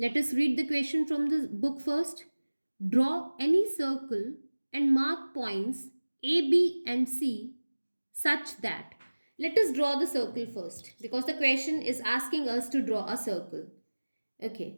us read the question from the book first. Draw any circle and mark points A, B and C such that. Let us draw the circle first because the question is asking us to draw a circle.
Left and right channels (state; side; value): inverted; both; correlation -1.00